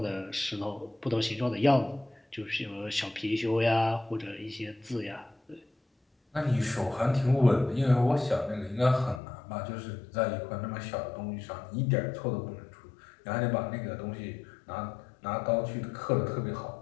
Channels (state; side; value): drops out; right; at 9.2 s